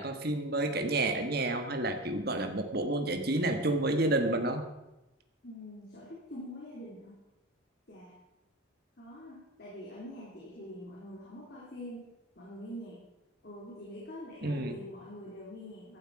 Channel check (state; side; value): normal; both; correlation 0.28